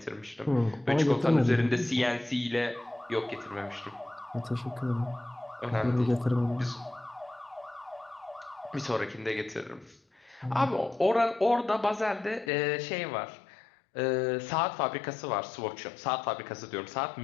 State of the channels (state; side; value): drops out; right; at 12.5 s